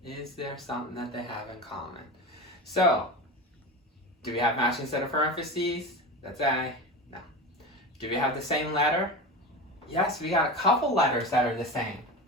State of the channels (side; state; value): both; normal; correlation 0.27